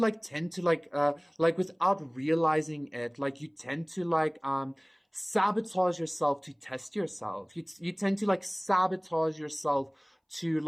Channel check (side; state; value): both; identical; correlation 1.00